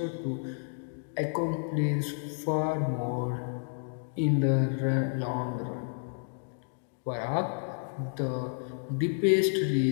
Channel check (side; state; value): right; silent; digital silence